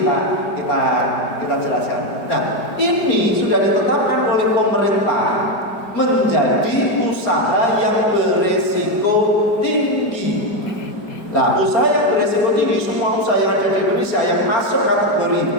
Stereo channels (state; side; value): late; right; 4.3 ms